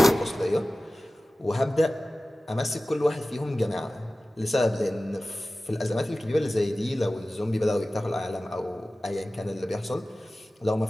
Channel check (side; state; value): both; normal; correlation 0.96